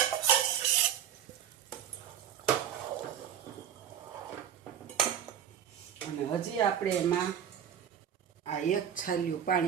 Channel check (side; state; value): left; quieter; 9.1 dB